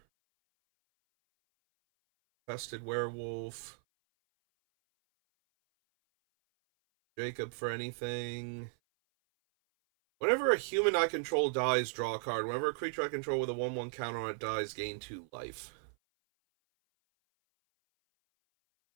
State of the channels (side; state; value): left; silent; 54 dB below the other